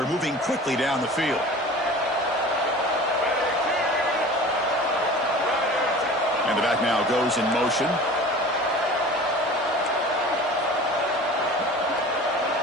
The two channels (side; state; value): both; normal; correlation 0.40